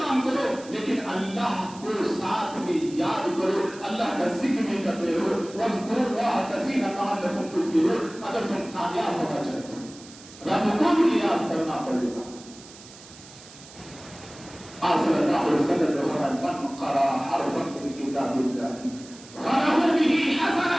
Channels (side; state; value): right; noise; hiss, 19 dB below the sound